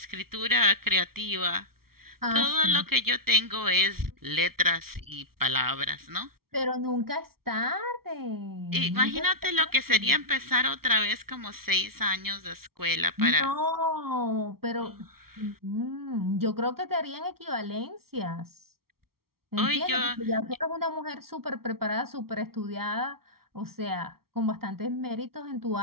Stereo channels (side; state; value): left; late; 0.94 ms